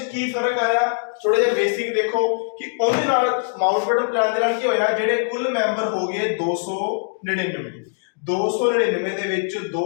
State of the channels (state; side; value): silent; right; digital silence